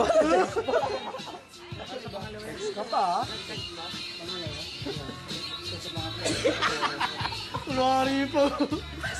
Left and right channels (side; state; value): both; identical; correlation 1.00